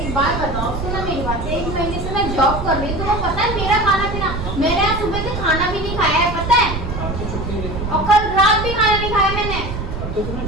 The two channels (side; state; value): right; noise; rumble, 5 dB below the sound